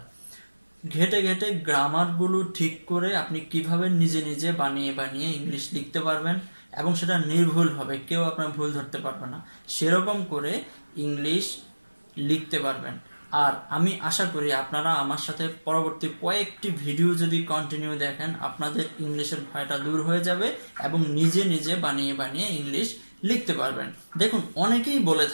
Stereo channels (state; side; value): inverted; both; correlation -1.00